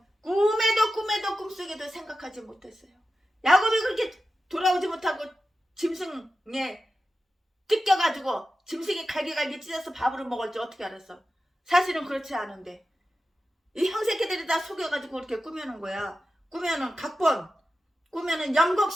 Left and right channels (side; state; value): both; normal; correlation 0.92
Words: 꿈에도 꿈속에도 생각하지 못했어요. 야곱이 그렇게 돌아오지 못하고 짐승에 뜯겨가지고 짐승이 갈기갈기 찢어서 밥으로 먹을 줄 어떻게 알았어? 사실은 그렇지 않은데 이 형새끼들이 다 속여가지고 그렇게 꾸며놓은 거야. 꾸며는 각본, 꾸며는